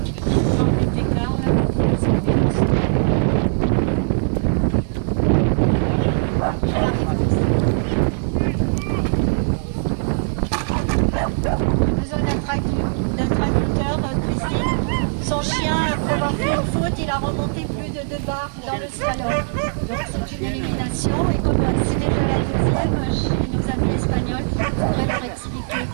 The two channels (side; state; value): left; silent; 65 dB below the other